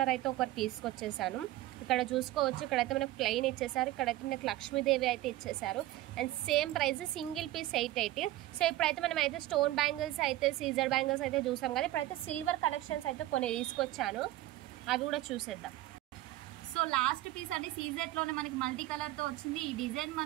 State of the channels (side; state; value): left; quieter; 15.9 dB